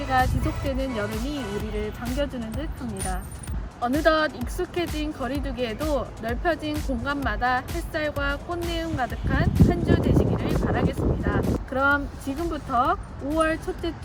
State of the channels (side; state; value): both; identical; correlation 1.00